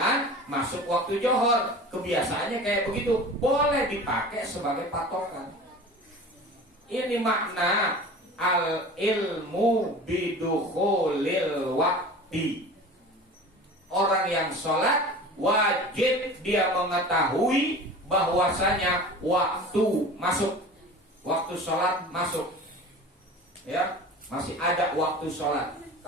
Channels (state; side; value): normal; both; correlation 0.38